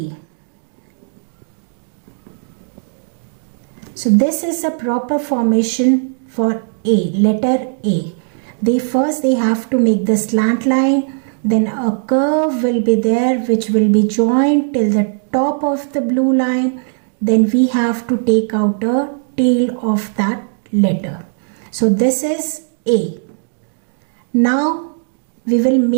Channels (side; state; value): left; silent; digital silence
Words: So this is a proper formation for A, letter A. They have to make the slant line, then a curve will be there which will be joined till the top of the blue line. Then we have to take out a tail of that letter. So this is A. Now we will